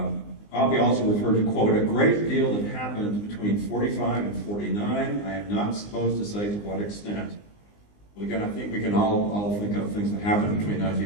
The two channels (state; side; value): late; right; 19 ms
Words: Oppie also referred to, quote, a great deal that happened between 45 and 49. I am not supposed to say to what extent. Well, again, I think we can all think of things that happened between